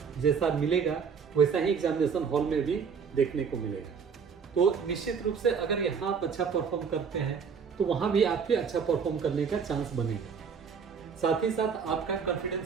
जैसा मिलेगा वैसा ही एग्जामिनेशन हॉल में भी देखने को मिलेगा। तो निश्चित रूप से अगर यहाँ आप अच्छा परफॉर्म करते हैं तो वहाँ भी आपके अच्छा परफॉर्म करने का चांस बनेगा। साथ ही साथ आपका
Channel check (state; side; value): quieter; left; 6.3 dB